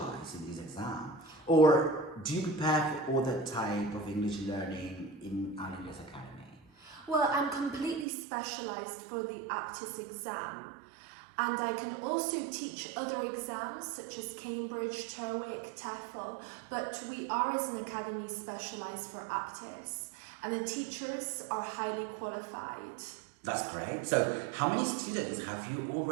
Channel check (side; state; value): left; drops out; at 8.1 s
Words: in this exam? Or do you prepare for other type of English learning in Aula Inglés Academy? Well, I'm completely specialized for the Aptis exam, and I can also teach other exams such as Cambridge, TOEIC, TOEFL, but we are as an academy specialized for Aptis, and the teachers are highly qualified. That's great. So how many students have you